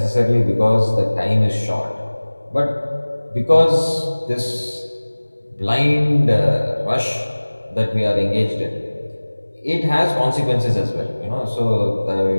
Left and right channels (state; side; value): inverted; both; correlation -1.00